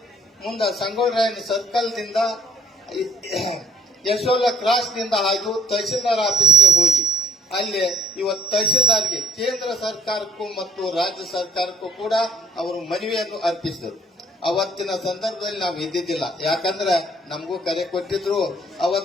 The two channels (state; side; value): normal; both; correlation 0.60